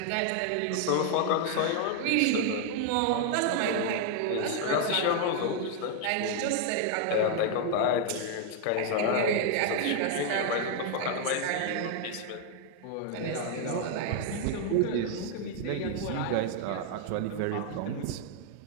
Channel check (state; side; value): different; both; correlation 0.00